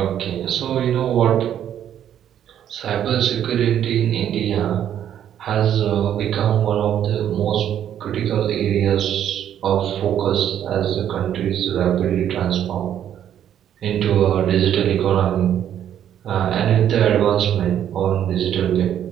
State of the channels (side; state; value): left; quieter; 10.2 dB